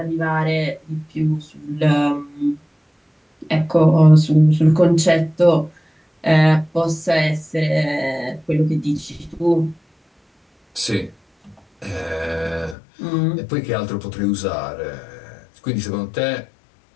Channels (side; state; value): right; drops out; at 12.8 s